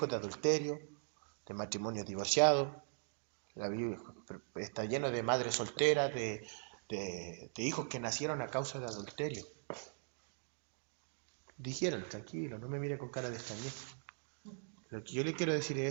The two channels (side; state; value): left; silent; digital silence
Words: de adulterio, de matrimonios divorciados. La Biblia está lleno de madres solteras, de hijos que nacieron a causa de adulterio. Dijeron, tranquilo, no me mire con cara de extrañeza. Lo que yo le quiero decir